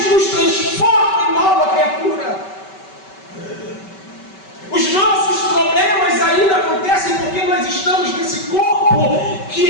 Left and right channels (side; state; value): right; late; 5.2 ms